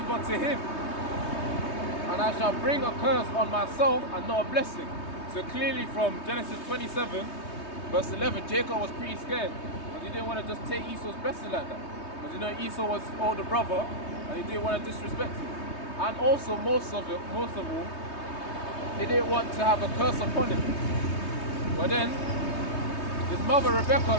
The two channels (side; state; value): right; late; 3.2 ms